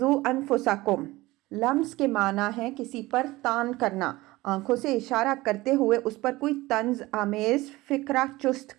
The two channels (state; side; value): quieter; left; 19.6 dB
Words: أَنفُسَكُمْ، لمز کے معنی ہے کسی پر تان کرنا، آنکھوں سے اشارہ کرتے ہوئے اس پر کوئی طنز آمیز فکرہ چست